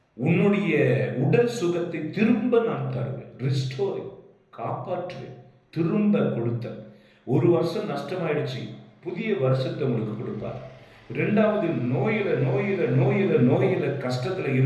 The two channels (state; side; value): identical; both; correlation 1.00